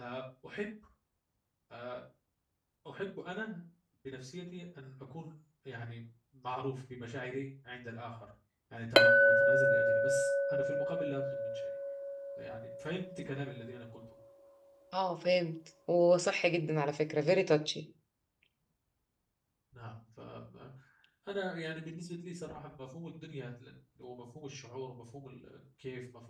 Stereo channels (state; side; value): identical; both; correlation 1.00